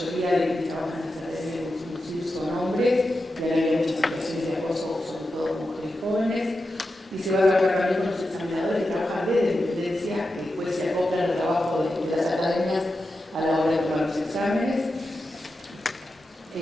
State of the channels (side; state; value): both; normal; correlation 0.90